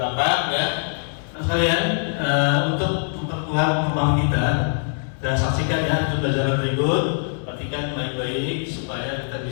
ya. Nah, sekalian untuk memperkuat pemahaman kita, dan saksikan ya untuk pelajaran berikut, perhatikan baik-baik supaya kita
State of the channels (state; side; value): silent; right; digital silence